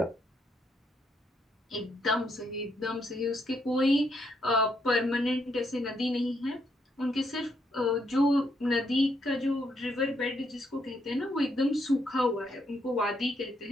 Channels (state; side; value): normal; both; correlation 0.75